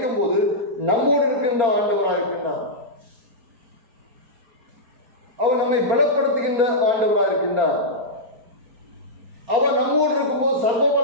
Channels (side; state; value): left; late; 4.3 ms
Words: போது நம்மோடு இருக்கின்ற ஆண்டவராக இருக்கின்றார். அவர் நம்மை பலப்படுத்துகின்ற ஆண்டவராக இருக்கின்றார். அவர் நம்மோடு இருக்கும்போது, சர்வ